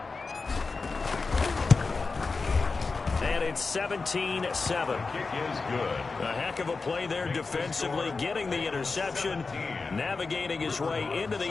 And it's 17-7. Kick is good. A heck of a play there defensively, getting the interception, navigating his way into the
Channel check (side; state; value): right; quieter; 4.2 dB